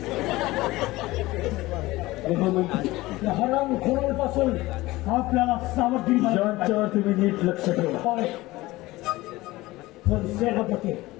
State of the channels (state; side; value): quieter; right; 19.1 dB